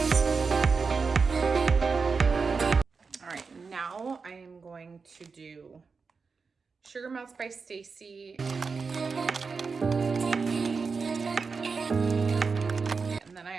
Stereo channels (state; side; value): quieter; left; 4.9 dB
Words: to do Sugar Melts by Stacy. And then I